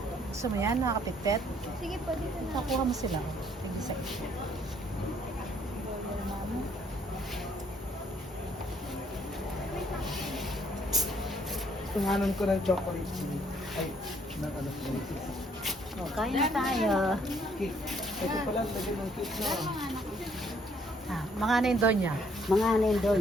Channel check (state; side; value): normal; both; correlation 0.66